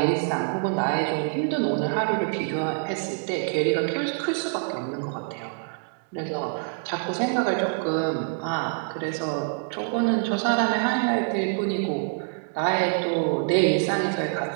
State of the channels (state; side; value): silent; left; 61 dB below the other